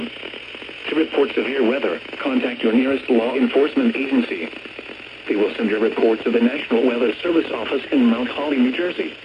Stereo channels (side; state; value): both; identical; correlation 1.00